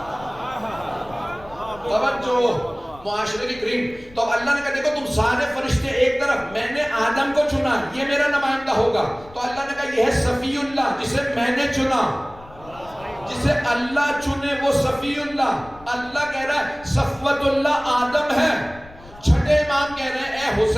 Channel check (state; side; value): noise; left; rumble, 22 dB below the sound